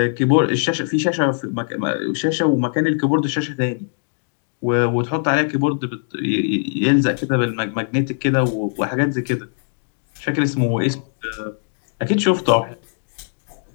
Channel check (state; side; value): silent; right; digital silence